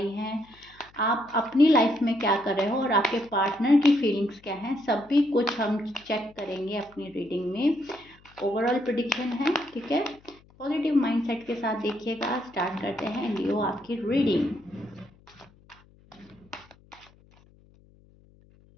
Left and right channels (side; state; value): left; noise; hum, 28 dB below the sound